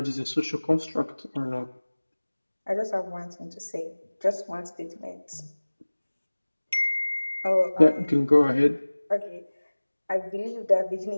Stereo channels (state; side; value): inverted; both; correlation -1.00